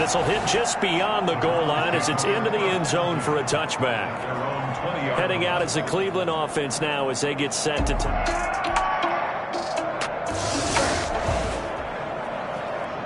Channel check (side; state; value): both; identical; correlation 1.00